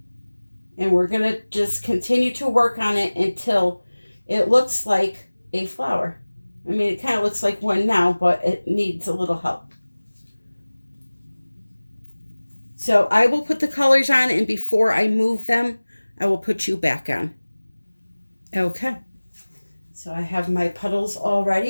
And we're going to just continue to work on it until it looks like a flower. I mean, it kind of looks like one now, but it needs a little help. So I will put the colors on, and before I move them, I will put you back on. Okay. So I have my puddles all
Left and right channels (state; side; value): inverted; both; correlation -1.00